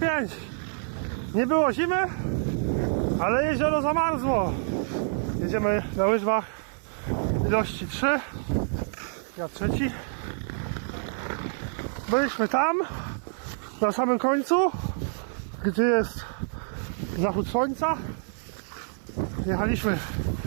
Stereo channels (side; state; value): left; silent; 55 dB below the other